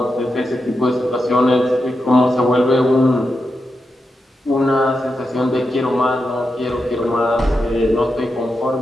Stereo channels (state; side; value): normal; both; correlation 0.87